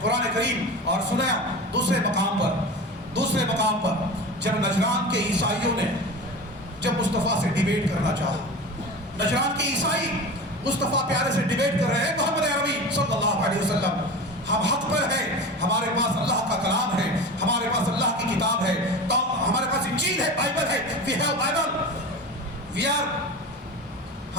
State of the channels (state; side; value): normal; both; correlation 0.31